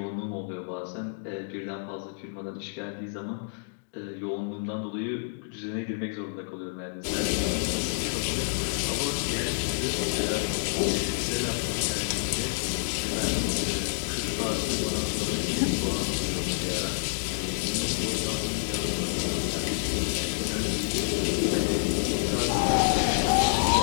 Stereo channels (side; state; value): right; silent; digital silence